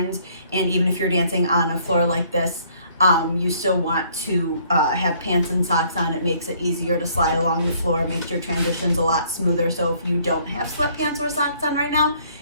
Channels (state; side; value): inverted; both; correlation -0.62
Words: And even if you're dancing on a floor like this, you still want to have pants and socks on. It makes it easier to slide along the floor, makes your transitions a lot smoother. So if you don't have sweatpants or socks on right now,